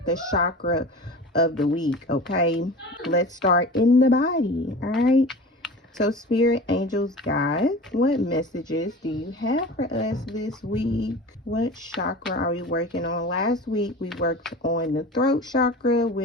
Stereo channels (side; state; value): both; normal; correlation 0.36